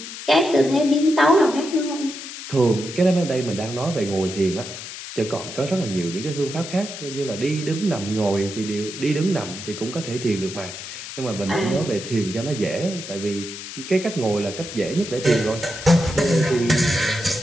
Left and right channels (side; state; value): left; noise; hiss, 10 dB below the sound